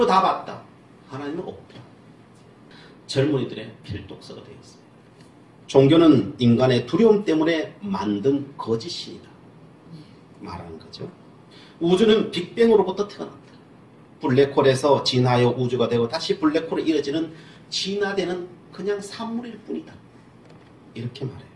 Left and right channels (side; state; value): both; identical; correlation 1.00